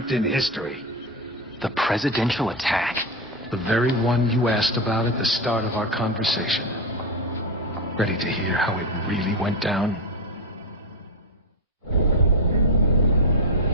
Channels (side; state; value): both; normal; correlation 0.12